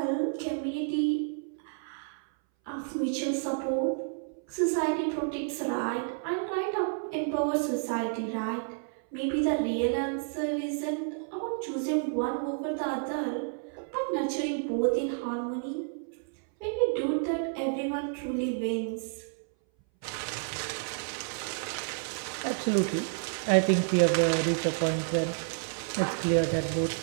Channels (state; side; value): silent; left; 58 dB below the other